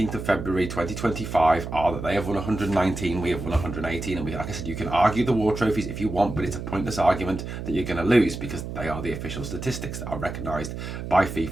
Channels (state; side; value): noise; right; hum, 7 dB below the sound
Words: of February 2025 are that they have won 119, we have won 118, and like I said, you can argue the war trophies if you want, but it's a pointless argument that you're going to lose because they are the official statistics that are recognised by